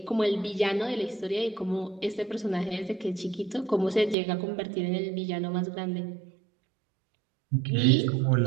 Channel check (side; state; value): left; drops out; at 4.2 s